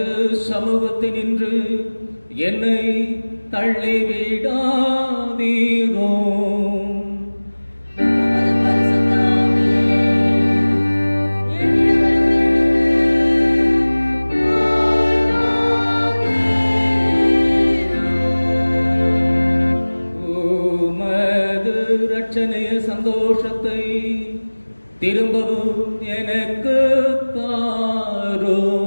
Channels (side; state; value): both; inverted; correlation -1.00